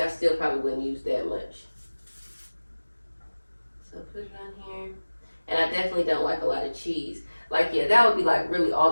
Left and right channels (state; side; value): inverted; both; correlation -1.00